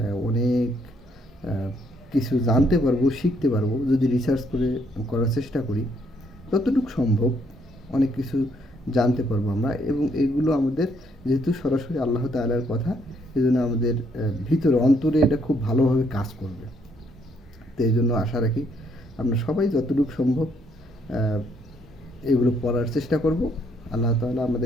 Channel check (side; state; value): both; normal; correlation 0.70